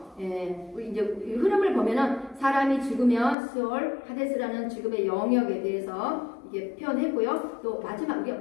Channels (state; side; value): drops out; right; at 3.4 s